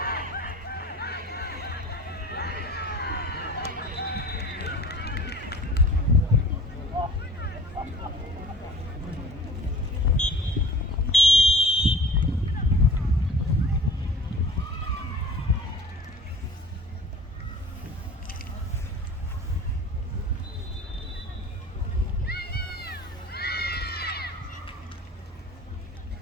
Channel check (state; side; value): normal; both; correlation 0.42